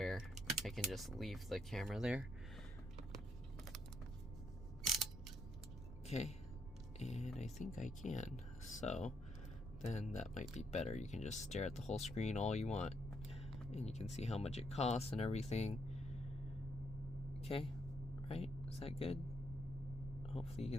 I can just leave the camera there. Okay, and I think I can, so then that might be better. You can just stare at the whole screen all you want, and you can see how much it costs and everything. Okay, right? Is that good? Hopefully you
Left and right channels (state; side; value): noise; right; rumble, 10 dB below the sound